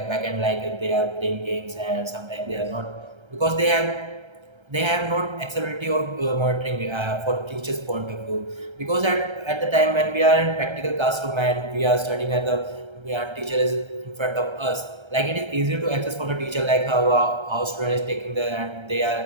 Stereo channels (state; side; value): late; left; 1.3 ms